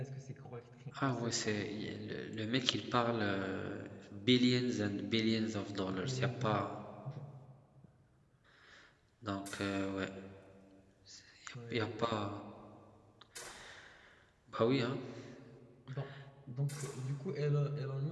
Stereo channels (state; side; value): identical; both; correlation 1.00